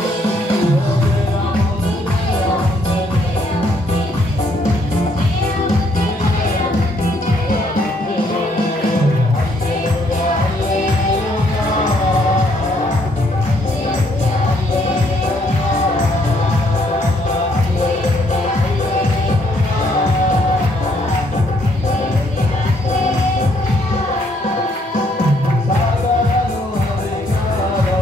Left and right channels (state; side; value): normal; both; correlation 0.69